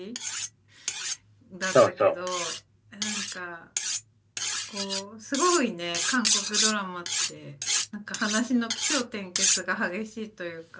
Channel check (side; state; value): both; identical; correlation 1.00